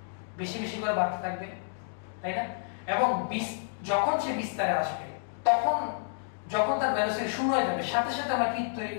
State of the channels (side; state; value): right; silent; digital silence